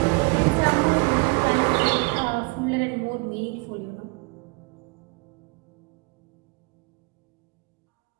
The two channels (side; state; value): left; quieter; 29.3 dB